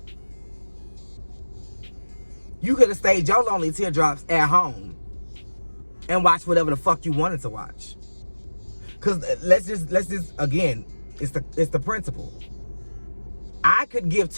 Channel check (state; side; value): inverted; both; correlation -1.00